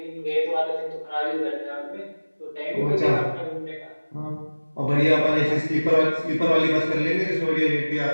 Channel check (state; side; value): inverted; both; correlation -1.00